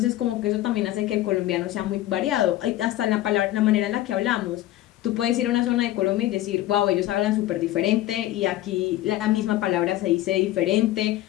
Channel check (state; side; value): quieter; right; 14.8 dB